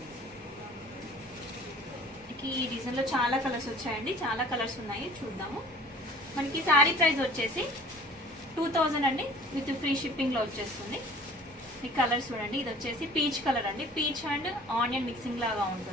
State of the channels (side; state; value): both; normal; correlation 0.48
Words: ఈ డిజైన్ లో చాలా కలర్స్ వచ్చాయండి, చాలా కలర్స్ ఉన్నాయి, చూద్దాము. మనకి శారీ ప్రైస్ వచ్చేసి 2000 అండి, విత్ ఫ్రీ షిప్పింగ్ లో వచ్చేస్తుంది. ఈ కలర్ చూడండి, ఇది వచ్చేసి పీచ్ కలర్ అండి. పీచ్ అండ్ ఆనియన్ మిక్సింగ్ లాగా